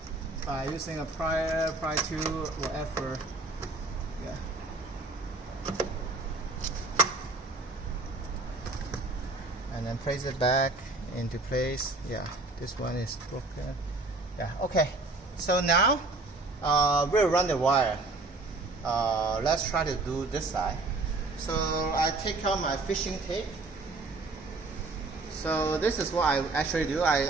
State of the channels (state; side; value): quieter; left; 3.2 dB